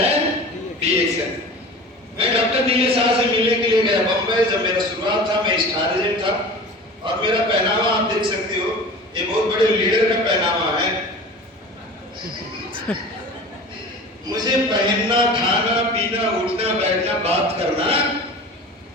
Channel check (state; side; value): normal; both; correlation 0.37